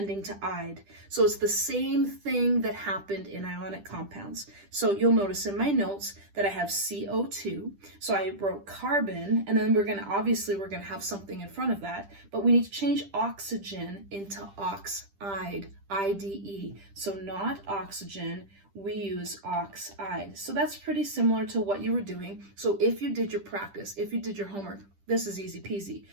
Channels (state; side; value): late; left; 10 ms